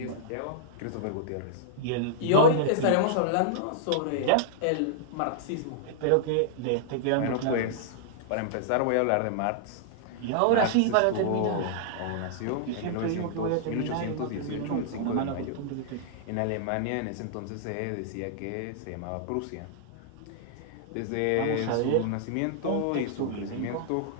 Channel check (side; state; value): both; different; correlation -0.02